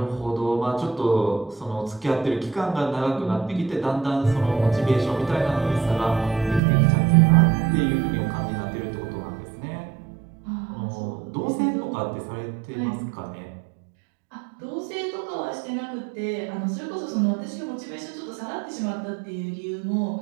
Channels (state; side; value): drops out; left; at 6.6 s